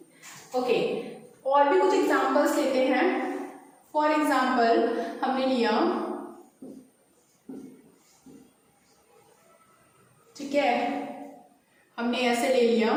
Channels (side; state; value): both; identical; correlation 1.00